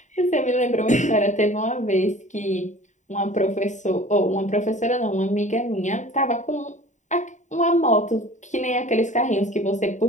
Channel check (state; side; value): late; right; 0.35 ms